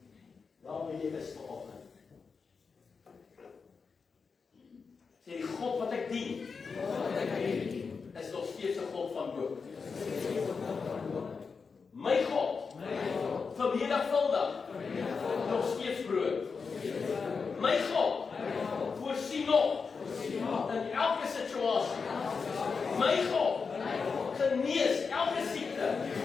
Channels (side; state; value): right; quieter; 5.2 dB